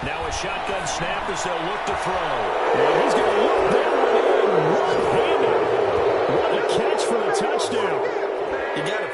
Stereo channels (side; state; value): both; identical; correlation 1.00